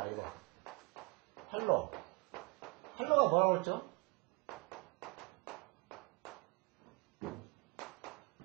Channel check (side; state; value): left; quieter; 28.3 dB